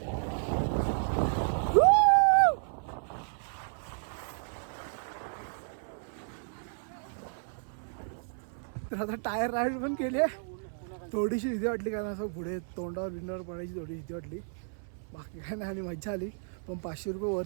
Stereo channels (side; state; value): left; silent; 56 dB below the other